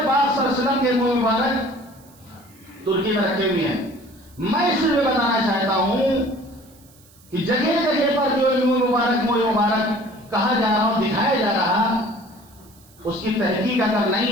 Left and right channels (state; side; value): noise; right; hiss, 27 dB below the sound